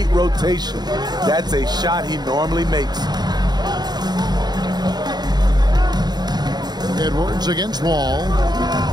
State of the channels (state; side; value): late; left; 0.20 ms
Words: rotation. That's a shot he normally makes. Edwards against Wall.